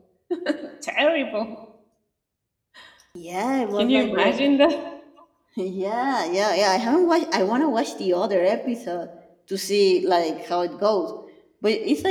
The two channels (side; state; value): both; identical; correlation 1.00